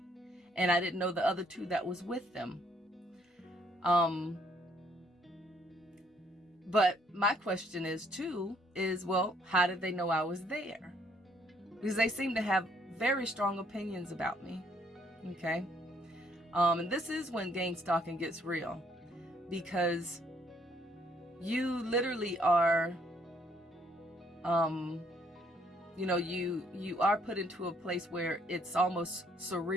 and I didn't know the other two that was with them. But my question is, well, how did they know I was there? Because they seem to have very strong opinions about me. Okay. And this is when gangstalking gets real, because you literally are, you are put into a place where it's almost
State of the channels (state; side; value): normal; both; correlation 0.66